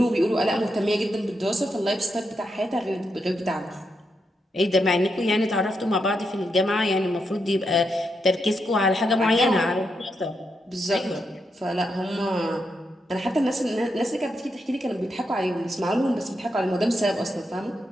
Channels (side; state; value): both; normal; correlation 0.83